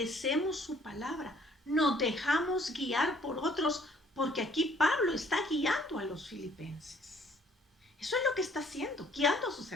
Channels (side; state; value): both; normal; correlation 0.61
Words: su palabra, nos dejamos guiar por otros, porque aquí Pablo está guiando a los filipenses. Eso es lo que está haciendo, guiando a sus